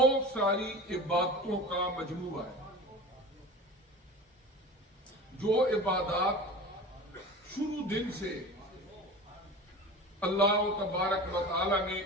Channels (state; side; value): normal; both; correlation 0.35